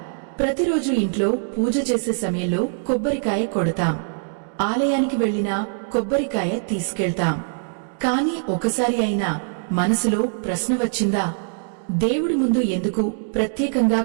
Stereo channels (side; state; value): left; silent; digital silence